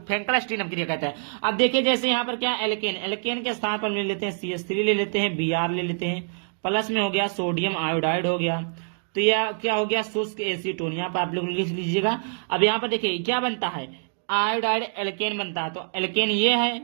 अपक्रिया कहते हैं। अब देखिए जैसे यहाँ पर क्या एल्केन के स्थान पर ले लेते हैं CH3 ले लेते हैं, Br ले लेते हैं, प्लस में हो गया सोडियम आयोडाइड हो गया। तो यह क्या हो गया? शुष्क एसीटोन। यहाँ पर आप लोग लिख लीजिएगा। अब यहाँ पर देखिए क्या बनता है? आयोडाइड एल्केन बनता है। तो एल्केन ये है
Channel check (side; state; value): left; silent; digital silence